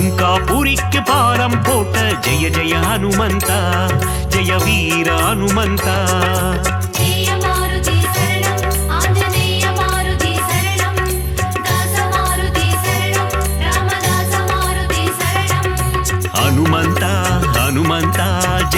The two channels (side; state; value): both; identical; correlation 1.00